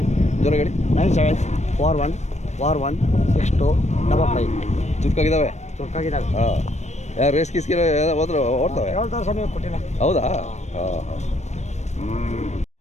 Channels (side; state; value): right; late; 0.33 ms